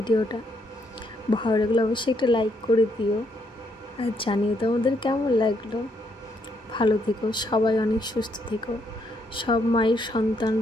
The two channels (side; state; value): both; normal; correlation 0.74